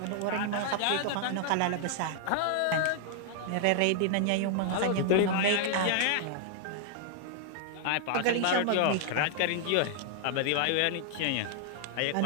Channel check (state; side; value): different; both; correlation 0.00